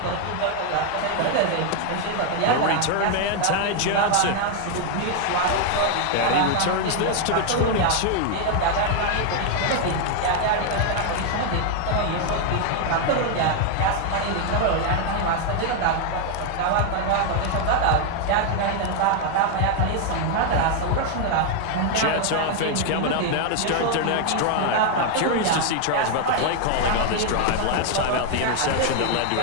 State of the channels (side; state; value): both; different; correlation 0.01